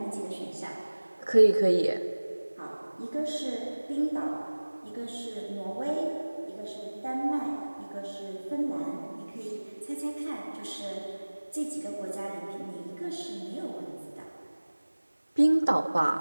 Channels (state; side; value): inverted; both; correlation -1.00